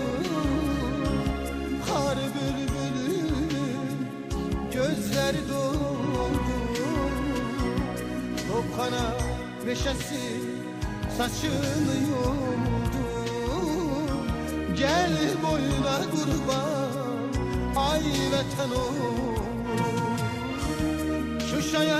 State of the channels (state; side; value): identical; both; correlation 1.00